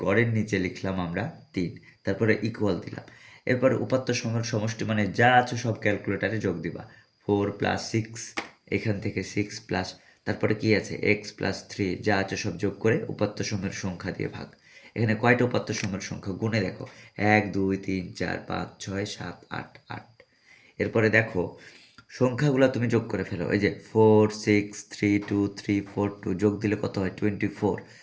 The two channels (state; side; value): identical; both; correlation 1.00